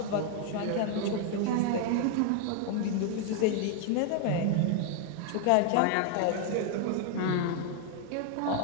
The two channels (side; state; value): both; different; correlation 0.00